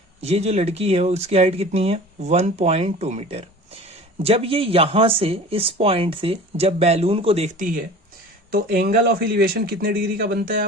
ये जो लड़की है उसकी हाइट कितनी है? 1.2 मीटर। जब ये यहां से, इस पॉइंट से जब बैलून को देखती है तो एंगल ऑफ एलिवेशन कितने डिग्री का बनता है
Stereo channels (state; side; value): normal; both; correlation 0.41